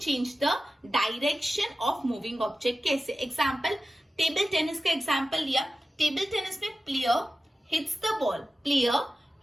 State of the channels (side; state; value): both; normal; correlation 0.94